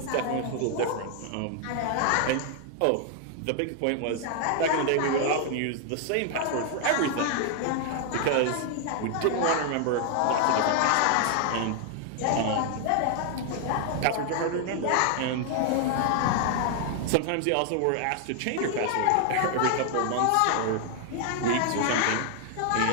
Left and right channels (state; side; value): different; both; correlation 0.00